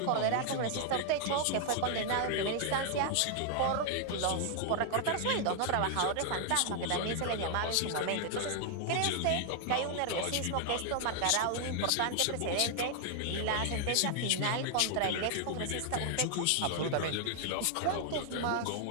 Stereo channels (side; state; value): both; different; correlation 0.00